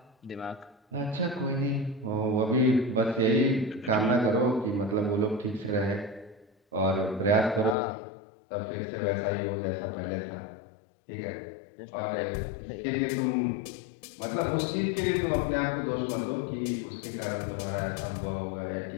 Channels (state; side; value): drops out; right; at 7.8 s